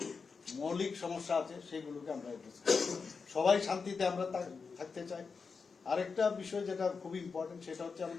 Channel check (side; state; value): right; quieter; 5.1 dB